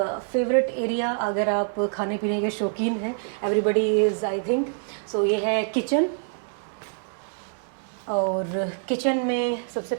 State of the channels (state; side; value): silent; left; digital silence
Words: फेवरेट एरिया, अगर आप खाने पीने के शौकीन हैं, एवरीबडी इज़ आई थिंक, सो ये है किचन। और किचन में सबसे